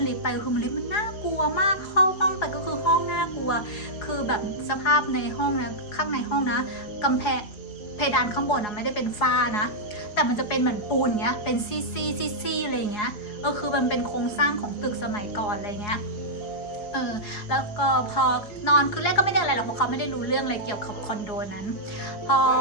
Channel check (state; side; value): late; right; 4.8 ms